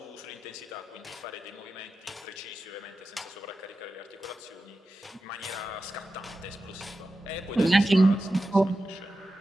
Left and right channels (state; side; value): normal; both; correlation 0.92